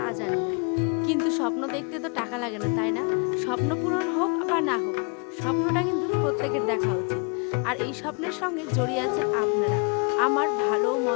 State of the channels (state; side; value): quieter; right; 36.6 dB